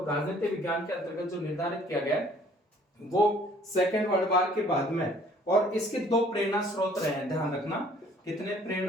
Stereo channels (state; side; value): normal; both; correlation 0.57